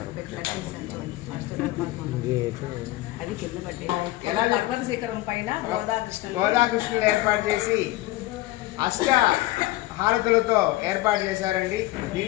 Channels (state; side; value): quieter; right; 17.5 dB